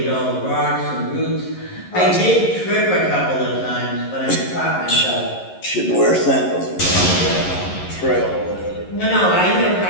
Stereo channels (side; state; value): right; late; 11 ms